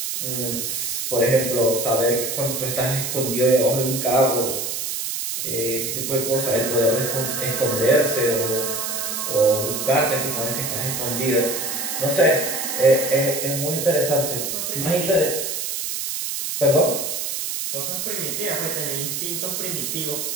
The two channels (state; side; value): noise; right; hiss, 3 dB below the sound